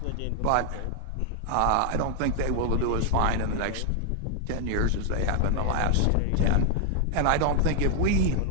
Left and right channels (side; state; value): both; different; correlation 0.00